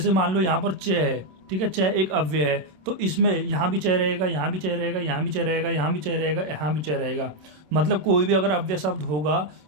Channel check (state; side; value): late; left; 27 ms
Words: मान लो यहाँ पर च है, ठीक है, च एक अव्यय है, तो इसमें यहाँ भी चय रहेगा, यहाँ भी चय रहेगा, यहाँ भी चय रहेगा, यहाँ भी चय रहेगा, यहाँ भी चय रहेगा। मतलब कोई भी अगर अव्यय शब्द होगा